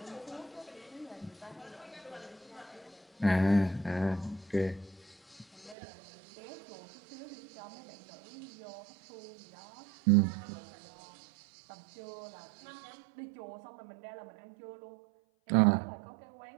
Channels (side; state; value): left; drops out; at 5.8 s